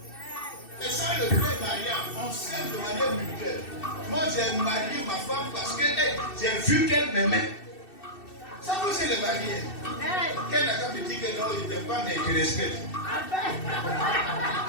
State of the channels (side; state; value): right; late; 2.6 ms